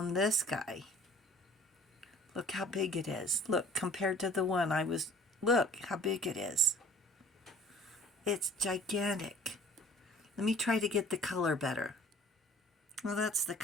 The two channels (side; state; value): both; normal; correlation 0.50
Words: this guy. Look how big it is. Look, compared to the one look how big it is. It's gigantic. Let me try to get the color better. Well, that's the